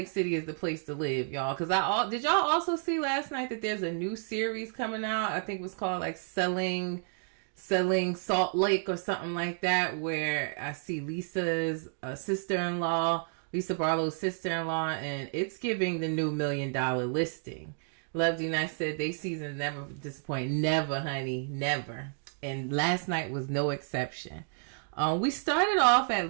City is the place to live, y'all. Because did y'all also see last night that there's a new series coming out? I think it was called like Selling Salt Lake or something like that, where I see Lisa's sister-in-law, Lisa Barlow's sister-in-law, and it's giving the new $1 million listing. Love D Nice said they season never disappoint. Never, honey, never. And last night was no exception. We started off at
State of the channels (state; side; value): silent; left; 57 dB below the other